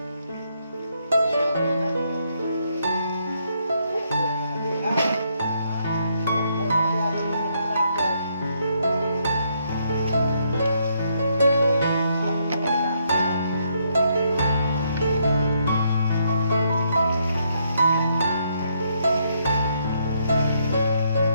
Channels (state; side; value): inverted; both; correlation -0.74